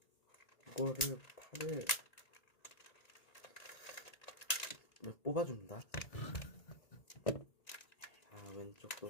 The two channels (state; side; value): late; right; 1.8 ms